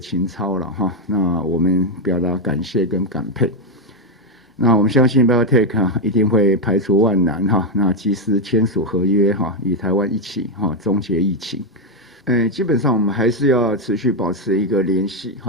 操了哈。那我们表达感谢跟感佩。那我们相信 BioNTech 一定会排除万难哈，那及时签署合约哈，与台湾一起哈终结疫情。基本上我们还是要持续保持一个联系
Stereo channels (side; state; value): both; normal; correlation 0.05